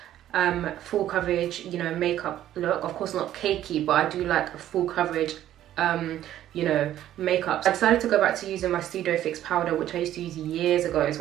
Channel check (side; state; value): left; quieter; 12.3 dB